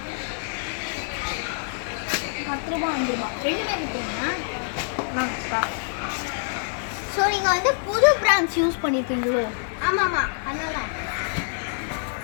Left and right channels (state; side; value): silent; right; digital silence